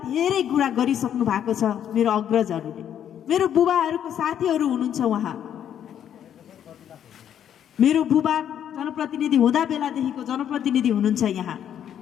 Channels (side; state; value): right; quieter; 9.7 dB